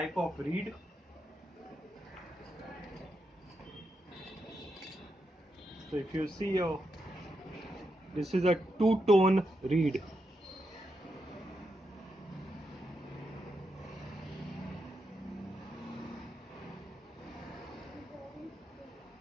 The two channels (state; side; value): normal; both; correlation 0.84